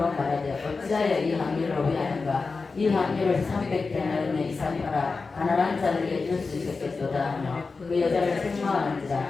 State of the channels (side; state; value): right; quieter; 4.3 dB